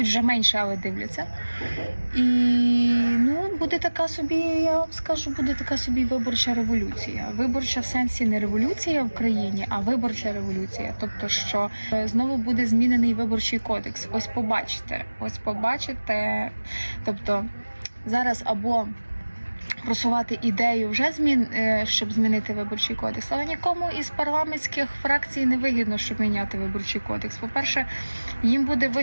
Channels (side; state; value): both; inverted; correlation -1.00